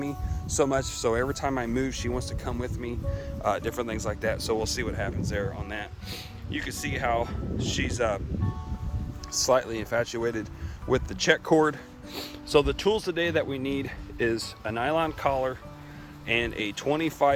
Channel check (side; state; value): both; identical; correlation 1.00